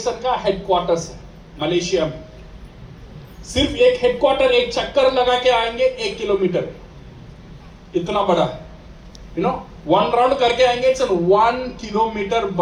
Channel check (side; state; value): both; identical; correlation 1.00